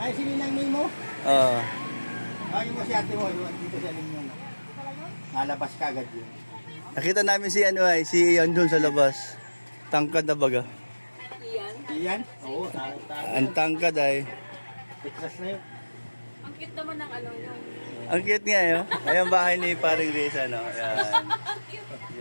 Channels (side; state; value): both; inverted; correlation -1.00